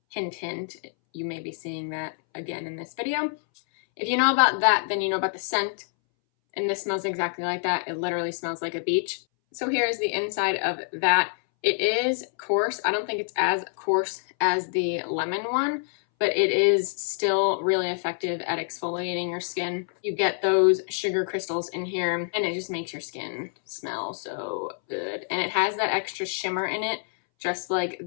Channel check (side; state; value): right; silent; 61 dB below the other